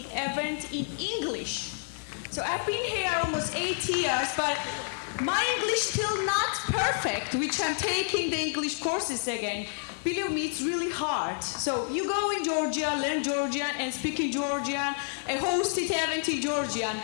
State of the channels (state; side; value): silent; right; digital silence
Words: event in English. So I've been here almost 8 years, but my English still not perfect, which I'm taking the English courses again. Believe me, it's really hard. So you go in Georgia, learn Georgian and speak in Georgian, and host it event in Georgian.